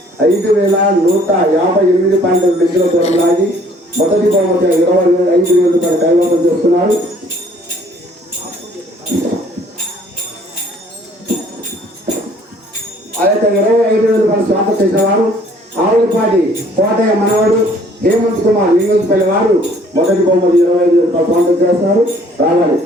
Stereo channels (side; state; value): both; normal; correlation 0.58